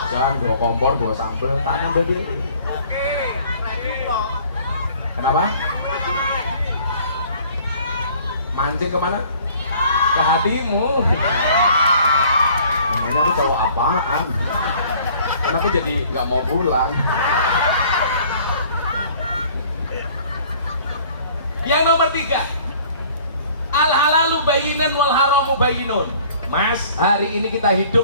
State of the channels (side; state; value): both; inverted; correlation -0.53